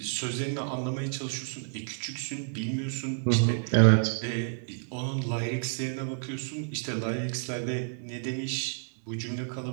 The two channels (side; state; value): left; silent; 58 dB below the other